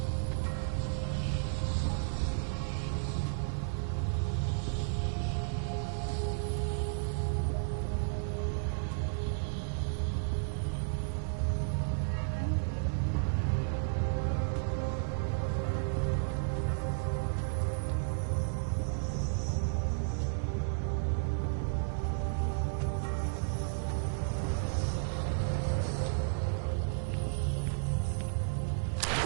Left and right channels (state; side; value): silent; left; 56 dB below the other